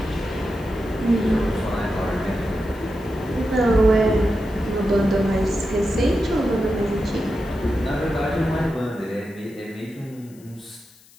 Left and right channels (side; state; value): left; noise; hiss, 26 dB below the sound